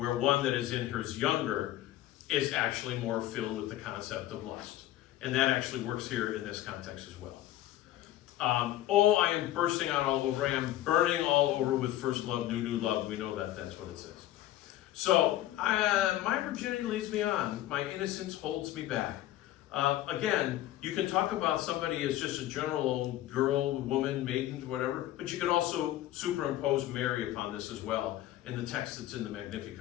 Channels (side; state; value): right; quieter; 14.2 dB